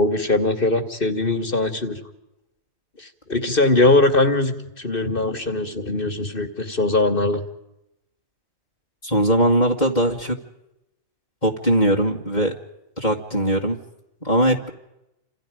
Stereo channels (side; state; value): right; late; 2.6 ms